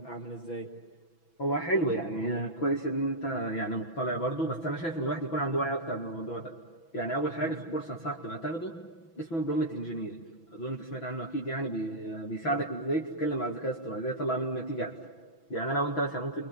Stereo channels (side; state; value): right; late; 6.1 ms